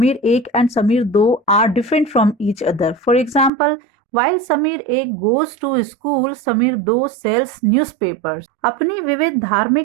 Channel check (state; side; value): drops out; left; at 3.5 s